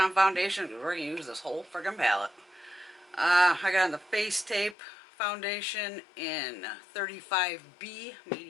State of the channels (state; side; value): drops out; right; at 4.8 s